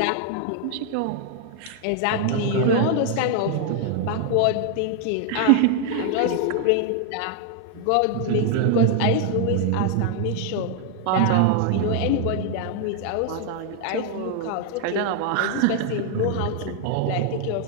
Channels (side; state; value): both; different; correlation 0.00